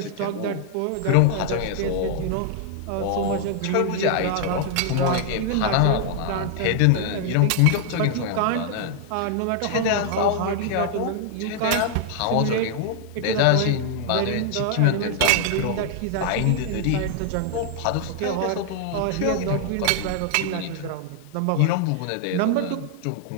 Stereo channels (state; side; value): different; both; correlation 0.00